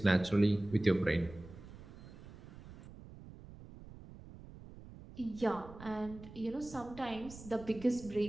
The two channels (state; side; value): noise; right; rumble, 16 dB below the sound